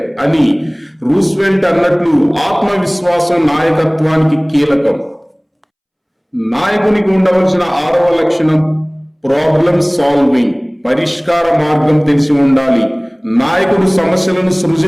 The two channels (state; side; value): identical; both; correlation 1.00